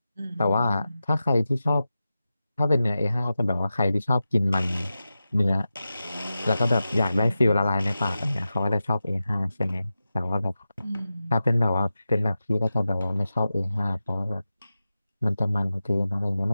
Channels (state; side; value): inverted; both; correlation -0.93